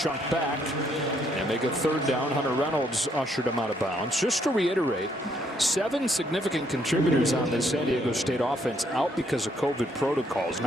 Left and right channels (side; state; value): both; normal; correlation 0.71